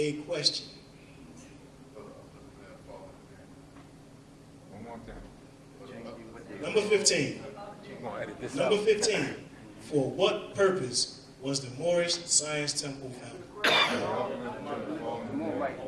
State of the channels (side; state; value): both; identical; correlation 1.00